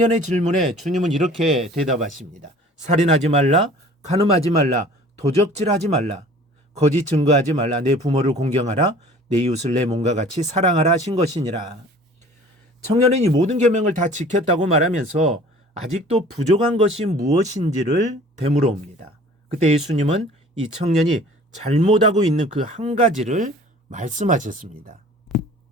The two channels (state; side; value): normal; both; correlation 0.47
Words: 질문에 주님은 이렇게 대답하십니다. 살인하지 말라, 간음하지 말라, 도적질하지 말라, 거짓 증거하지 말라, 내 부모를 공경하라, 내 이웃을 내 몸과 같이 사랑하라 하신 것이니라. 청년은 이 모든 계명을 다 지켰다고 말하면서 아직도 부족한 것이 무엇인지를 되물어 옵니다. 그때 예수님은 이 청년이 잘못하고 있는 그 한 가지를 말씀하셨습니다.